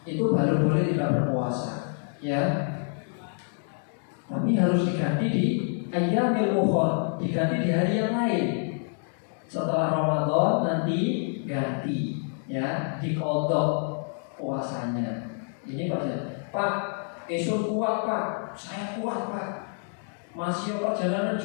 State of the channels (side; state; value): right; silent; 58 dB below the other